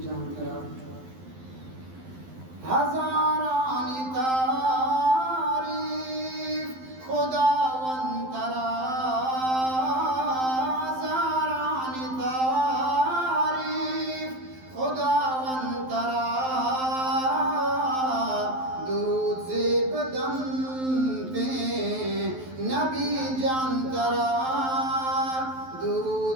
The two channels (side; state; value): left; late; 12 ms